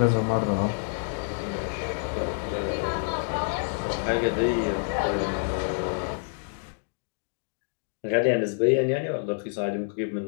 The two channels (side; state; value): right; silent; digital silence